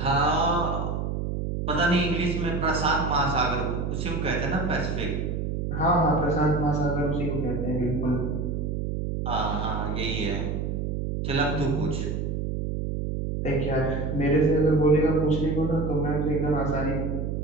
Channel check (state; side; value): noise; right; hum, 2 dB below the sound